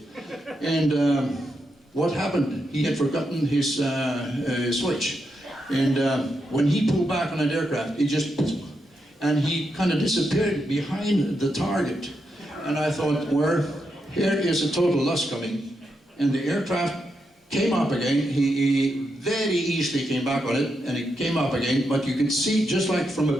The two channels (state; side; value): normal; both; correlation 0.84